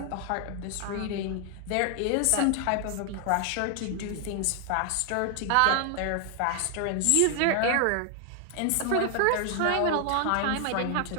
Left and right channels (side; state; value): both; different; correlation 0.00